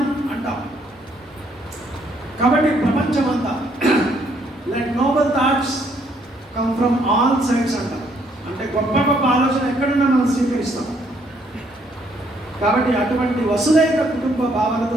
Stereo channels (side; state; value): both; normal; correlation 0.68